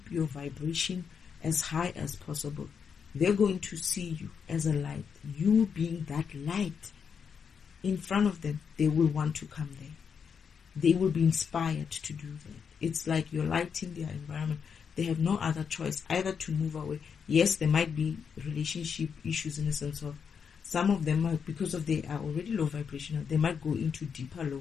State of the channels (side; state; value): right; quieter; 6.6 dB